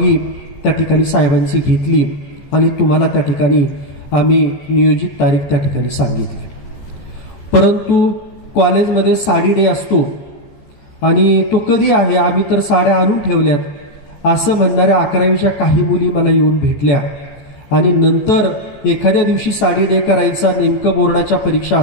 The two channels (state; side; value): late; right; 14 ms